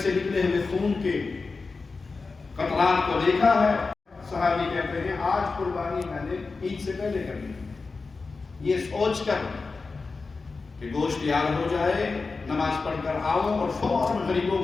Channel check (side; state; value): right; quieter; 4.2 dB